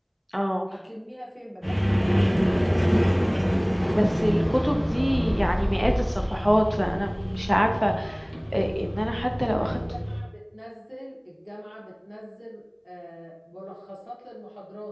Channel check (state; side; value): identical; both; correlation 1.00